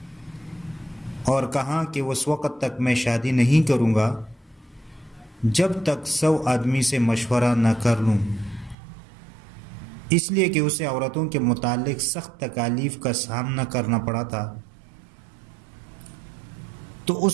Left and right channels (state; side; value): drops out; left; at 8.8 s